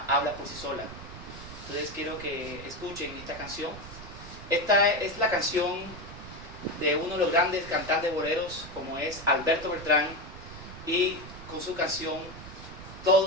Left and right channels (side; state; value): right; noise; rumble, 13 dB below the sound